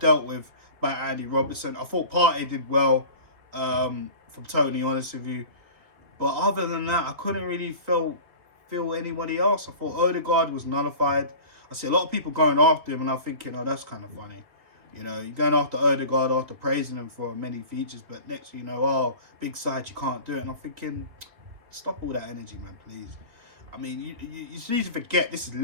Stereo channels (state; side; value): late; left; 3.7 ms